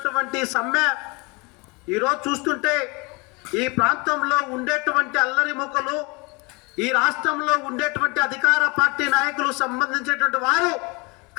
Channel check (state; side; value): quieter; right; 28.0 dB